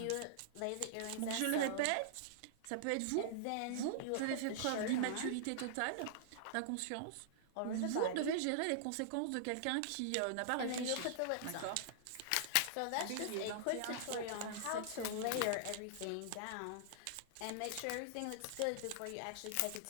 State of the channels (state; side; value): different; both; correlation -0.01